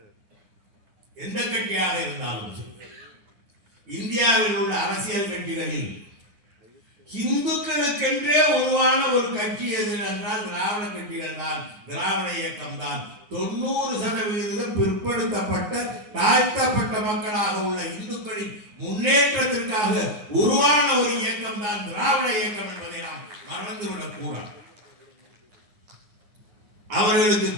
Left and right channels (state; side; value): late; left; 9.5 ms